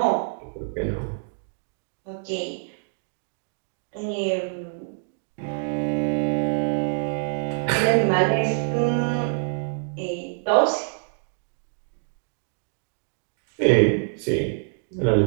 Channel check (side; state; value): left; silent; digital silence